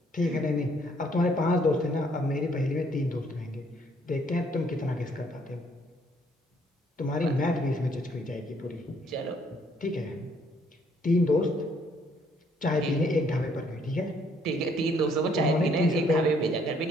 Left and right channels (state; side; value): normal; both; correlation 0.66